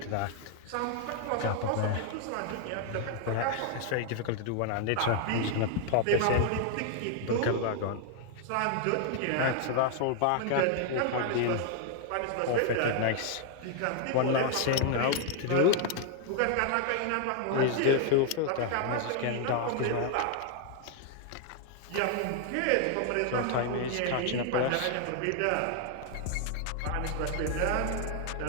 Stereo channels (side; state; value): both; different; correlation 0.00